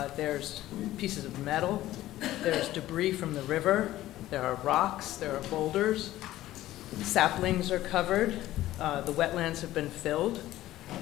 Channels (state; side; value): quieter; right; 15.0 dB